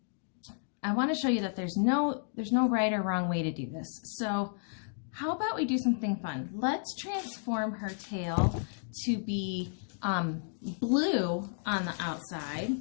I want to show you that there's no right or wrong way to do this. So how about we do something fun? Let's transform her tail to be blue on the outside,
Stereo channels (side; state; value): right; silent; digital silence